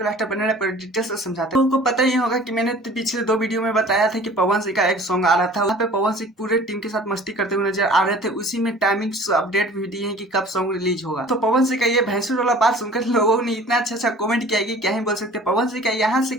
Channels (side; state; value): both; normal; correlation 0.47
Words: लास्ट बने पर डिटेल से समझाते हैं। लोगों को पता ही होगा कि मैंने पिछले 2 वीडियो में बताया था कि पवन सिंह का एक सॉन्ग आ रहा था, वहाँ पे पवन सिंह पूरे टीम के साथ मस्ती करते हुए नजर आ रहे थे। उसी में टाइमिंग अपडेट भी दिए हैं कि कब सॉन्ग रिलीज होगा। तो पवन सिंह का ये भैंसुर वाला बात सुनकर लोगों ने इतना अच्छा कमेंट किया कि क्या ही बोल सकते। पवन सिंह का यहाँ से